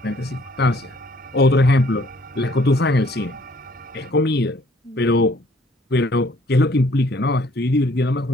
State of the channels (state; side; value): normal; both; correlation 0.61